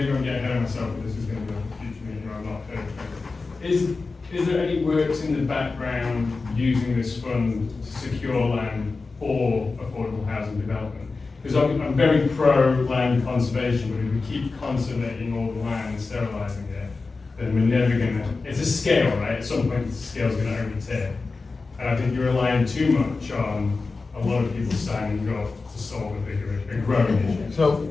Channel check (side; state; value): right; quieter; 4.0 dB